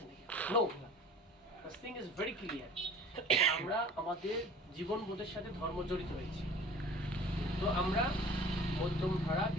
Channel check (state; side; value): normal; both; correlation 0.45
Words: নাকি? No, this thing is very clear. আমরা আমাদের জীবনবোধের সাথে ধর্ম জড়িত হয়েছি, তো আমরা মধ্যম ধারা